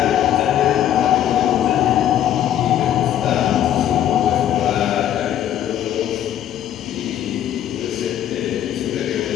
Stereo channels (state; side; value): quieter; right; 11.0 dB